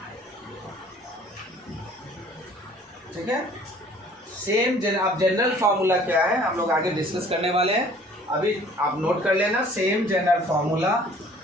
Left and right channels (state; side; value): normal; both; correlation 0.53